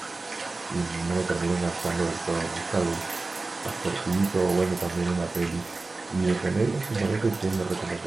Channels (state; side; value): quieter; left; 3.5 dB